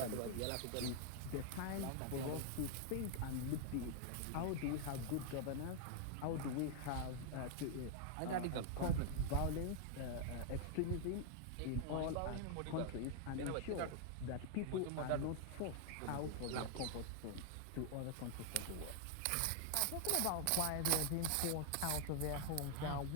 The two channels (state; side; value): different; both; correlation 0.00